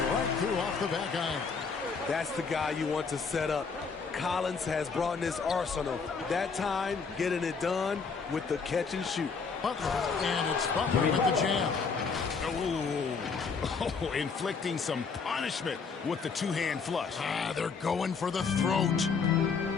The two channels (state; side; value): quieter; right; 5.2 dB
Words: right through off the back iron. That's the guy you want to set up. Collins has brought in his arsenal. That time, getting it done with the catch and shoot. Butler, and it's Butler with the jam. Oh, inflicting some punishment with the two-hand flush. They're going for the throat.